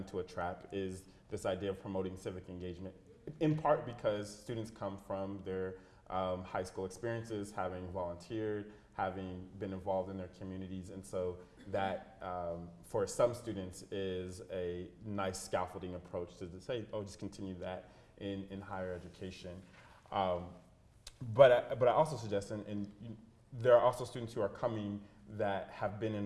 a trap is this idea of promoting civic engagement, in part because students come from their high school experiences, having volunteered, having been involved in their communities, and so that for some students is a nice scaffolding approach to say, oh, just continue that in higher education. But I also suggest, and there are also students who are coming that have been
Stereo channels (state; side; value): identical; both; correlation 1.00